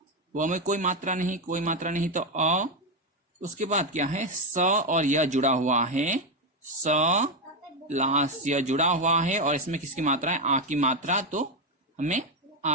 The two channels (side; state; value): both; normal; correlation 0.08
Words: व में कोई मात्रा नहीं तो अ। उसके बाद क्या है स और यह जुड़ा हुआ है, स प्लस यह जुड़ा हुआ है और इसमें किसकी मात्रा है, आ की मात्रा, तो हमें